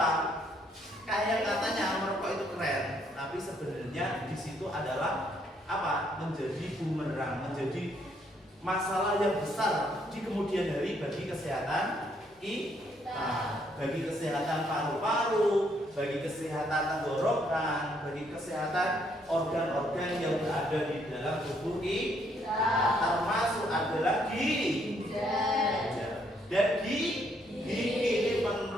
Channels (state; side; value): normal; both; correlation 0.70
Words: Kayak katanya merokok itu keren, tapi sebenarnya di situ adalah apa? Menjadi bumerang, menjadi masalah yang besar di kemudian hari bagi kesehatan kita, bagi kesehatan paru-paru, bagi kesehatan tenggorokan, bagi kesehatan organ-organ yang berada ada di dalam tubuh kita, termasuk adalah ginjal. Dan gigi ini